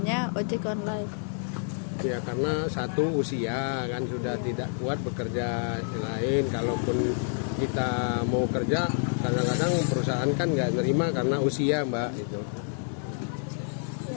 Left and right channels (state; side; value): silent; right; 59 dB below the other